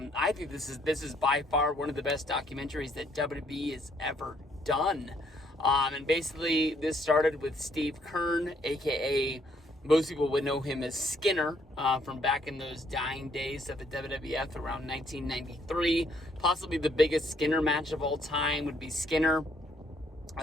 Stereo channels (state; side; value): normal; both; correlation 0.68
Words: think this is by far one of the best documentaries that WWE has ever done. And basically this started with Steve Keirn, aka most people would know him as Skinner from back in those dying days of the WWF around 1993. Possibly the biggest Skinner match of all time would be Skinner